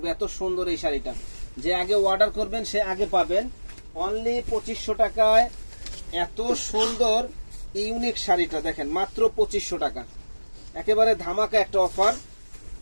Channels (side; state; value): both; inverted; correlation -1.00